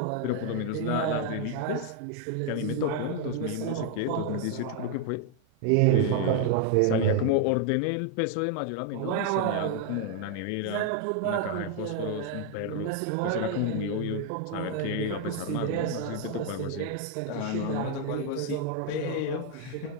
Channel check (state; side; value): different; both; correlation 0.00